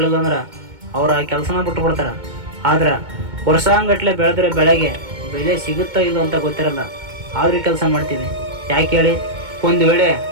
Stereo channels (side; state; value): left; late; 2.2 ms